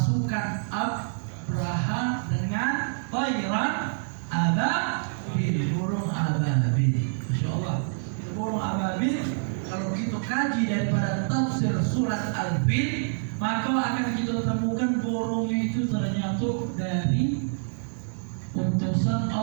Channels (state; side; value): silent; left; digital silence